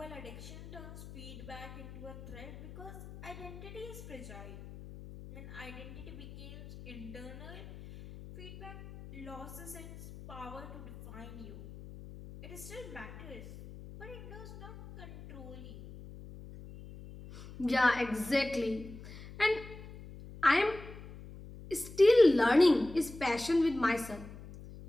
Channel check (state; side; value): noise; left; hum, 14 dB below the sound